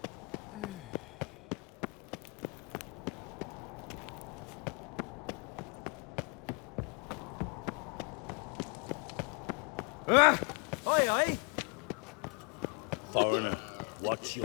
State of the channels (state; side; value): quieter; right; 33.1 dB